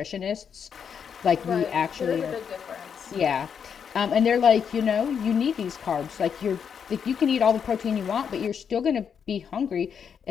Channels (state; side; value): quieter; right; 7.3 dB